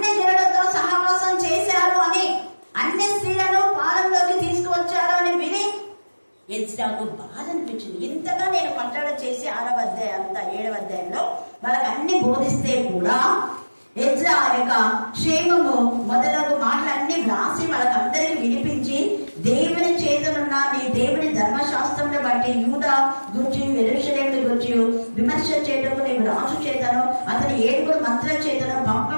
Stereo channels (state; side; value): inverted; both; correlation -1.00